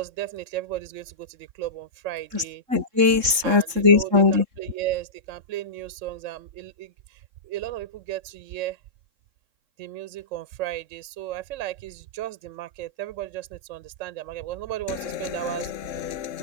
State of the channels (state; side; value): late; left; 3.7 ms